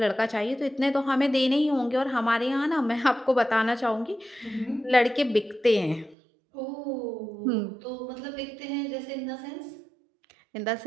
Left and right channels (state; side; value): drops out; left; at 6.2 s